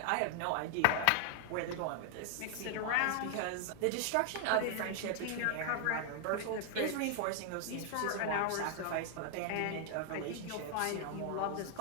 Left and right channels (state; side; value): different; both; correlation 0.00